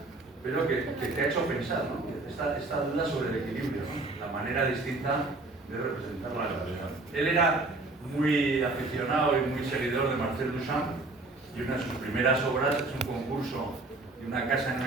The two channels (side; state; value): left; quieter; 3.2 dB